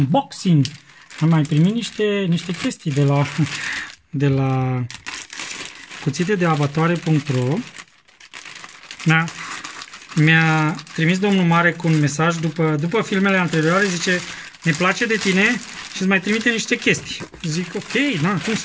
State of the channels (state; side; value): identical; both; correlation 1.00